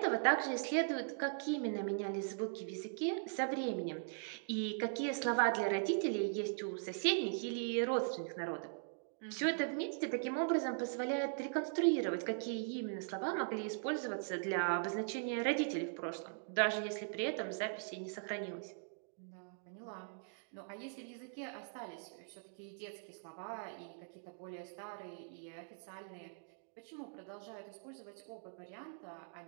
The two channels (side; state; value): left; silent; digital silence